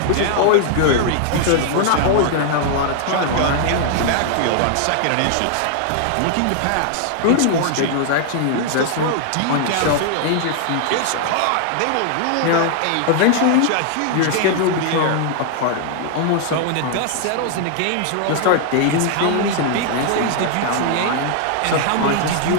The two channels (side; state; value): both; different; correlation 0.00